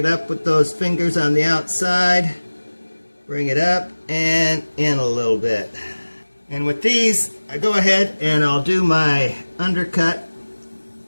up with those fingers on the outside. Bring it up and in a little bit. And with these, I go ahead and I'll do my undercut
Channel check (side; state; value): both; inverted; correlation -1.00